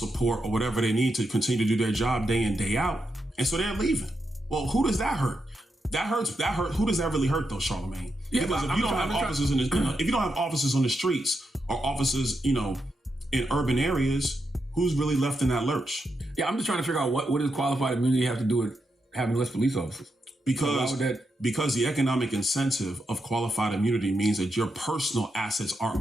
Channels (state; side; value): normal; both; correlation 0.84